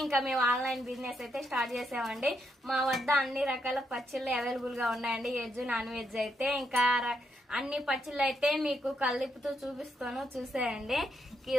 ఇంకా మేము ఆన్లైన్ బిజినెస్ అయితే స్టార్ట్ చేసామండి. మా వద్ద అన్ని రకాల పచ్చళ్ళు అవైలబుల్ గా ఉన్నాయండి, వెజ్ నాన్ వెజ్ అయితే. ఇంకా అన్ని పచ్చళ్ళు అయితే మీకు కలిపుతూ చూపిస్తాను, చూసేయండి.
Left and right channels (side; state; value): both; normal; correlation 0.79